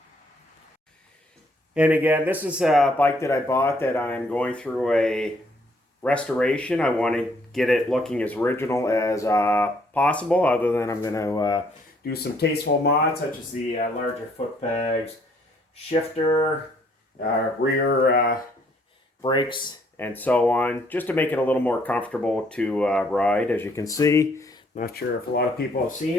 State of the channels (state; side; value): normal; both; correlation 0.66